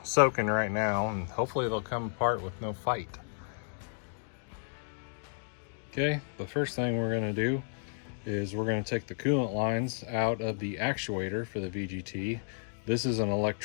soaking right now, and hopefully they'll come apart with no fight. Okay, the first thing we're gonna do is we're gonna take the coolant lines out of the actuator for the VGT. This is an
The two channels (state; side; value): silent; right; digital silence